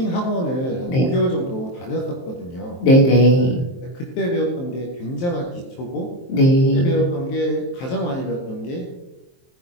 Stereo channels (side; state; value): right; late; 23 ms